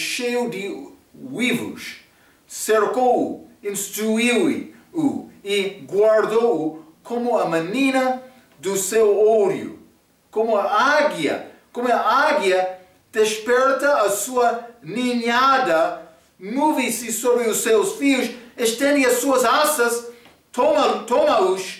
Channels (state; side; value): identical; both; correlation 1.00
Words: de uivos. Cercou-o, instruiu-o e guardou-o como a menina do seu olho. Como a águia desperta a sua ninhada, move-se sobre os seus fios, estende as suas asas,